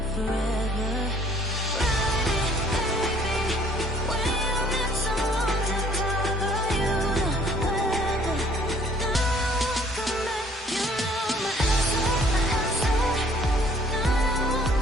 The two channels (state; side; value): normal; both; correlation 0.59